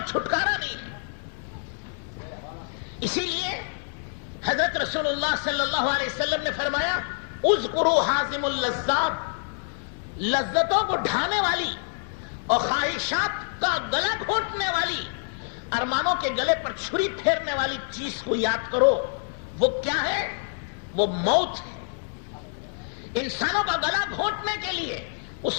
چھٹکارا نہیں ہے۔ اسی لیے حضرت رسول اللہ صلی اللہ علیہ وسلم نے فرمایا، اذکروا حازم اللذات، لذتوں کو ڈھانے والی اور خواہشات کا گلا گھونٹنے والی، ارمانوں کے گلے پر چھری پھیرنے والی چیز کو یاد کرو۔ وہ کیا ہے؟ وہ موت ہے۔ انسانوں کا گلا گھونٹنے کے لیے،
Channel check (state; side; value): silent; right; 60 dB below the other